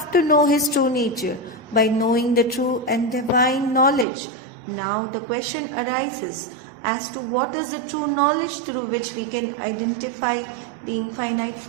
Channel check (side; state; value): left; drops out; at 4.0 s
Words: to know his true nature by knowing the true and divine knowledge. Now the question arises as to what is the true knowledge through which we can identify the infinite